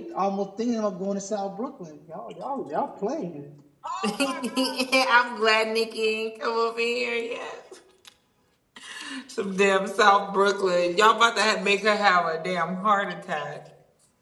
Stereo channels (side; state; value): both; identical; correlation 1.00